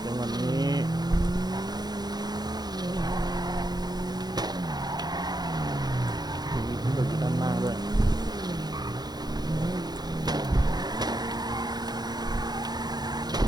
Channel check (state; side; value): late; left; 0.20 ms